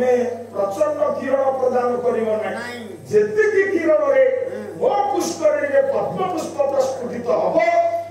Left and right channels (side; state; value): both; identical; correlation 1.00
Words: ପ୍ରଚଣ୍ଡ କିରଣ ପ୍ରଦାନ କରିବ ନାହିଁ ଯେତିକି କିରଣରେ ମୋ ପୁଷ୍କରିଣୀରେ ପଦ୍ମ ପୁଷ୍ପ ପ୍ରସ୍ଫୁଟିତ ହବ